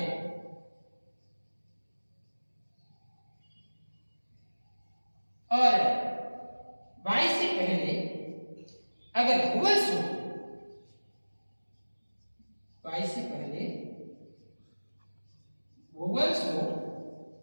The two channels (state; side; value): inverted; both; correlation -1.00